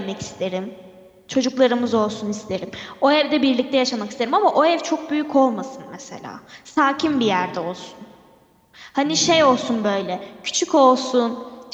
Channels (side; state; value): both; identical; correlation 1.00